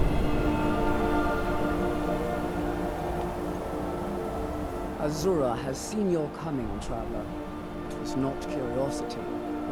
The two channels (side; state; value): both; identical; correlation 1.00